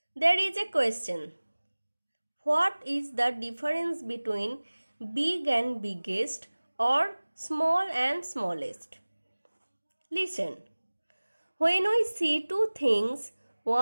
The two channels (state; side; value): inverted; both; correlation -1.00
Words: there is a question. What is the difference between big and biggest or small and smallest? Listen. When we see two things,